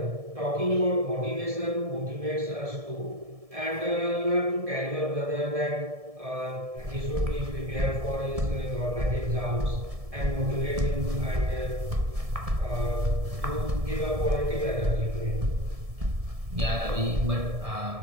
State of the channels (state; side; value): late; left; 1.7 ms